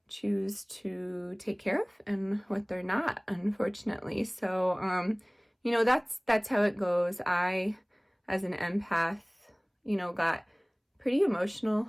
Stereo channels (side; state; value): both; identical; correlation 1.00